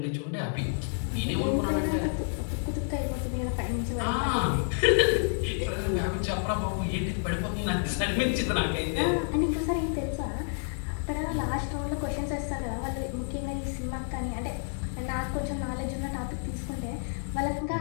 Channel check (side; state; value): right; silent; 58 dB below the other